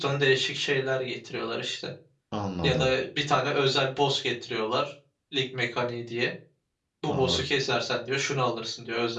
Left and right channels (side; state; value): both; identical; correlation 1.00